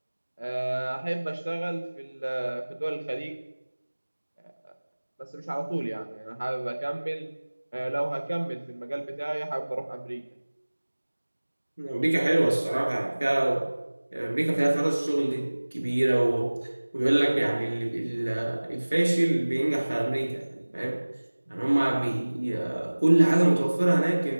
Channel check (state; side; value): inverted; both; correlation -1.00